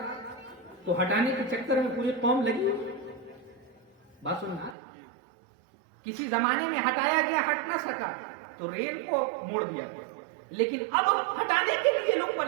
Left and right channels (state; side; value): drops out; left; at 4.8 s